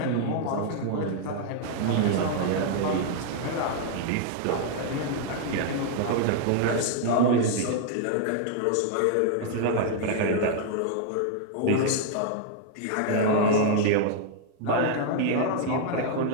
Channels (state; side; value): different; both; correlation -0.01